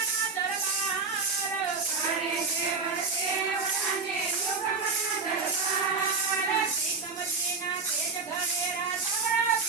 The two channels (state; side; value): quieter; left; 4.7 dB